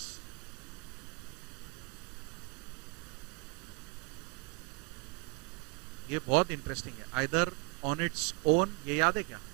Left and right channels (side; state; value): left; quieter; 29.4 dB